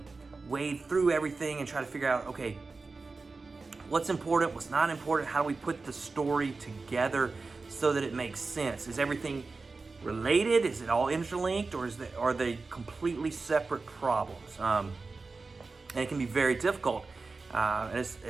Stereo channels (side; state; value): left; quieter; 4.0 dB